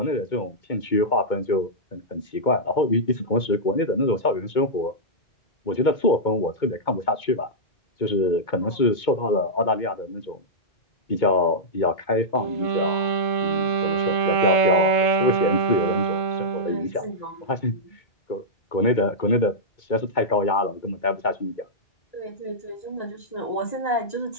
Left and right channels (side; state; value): right; late; 2.2 ms